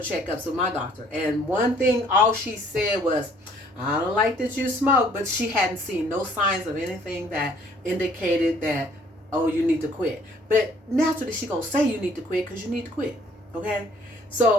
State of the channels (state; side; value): normal; both; correlation 0.60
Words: with my doctor. And one thing, all she said was, I don't like that you smoke. But she hadn't seen no signs of anything that indicated that, oh, you need to quit. But naturally, she going to say you need to quit because you need to quit. Okay?